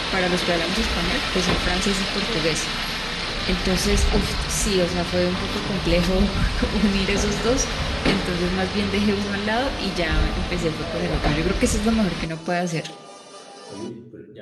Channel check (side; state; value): both; identical; correlation 1.00